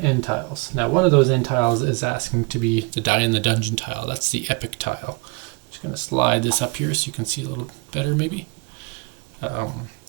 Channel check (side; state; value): left; quieter; 28.6 dB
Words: end tiles. Now one of those end tiles is asking to be the Die in the Dungeon tile. That's the epic tile. I'm just going to slide this up here so you can see a little better maybe.